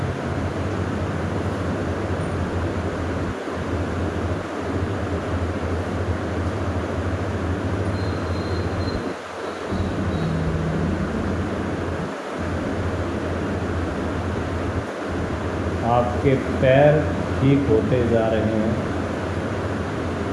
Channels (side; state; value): both; identical; correlation 1.00